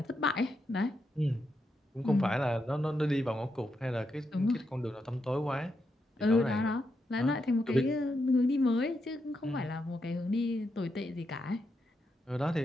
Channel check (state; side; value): normal; both; correlation 0.83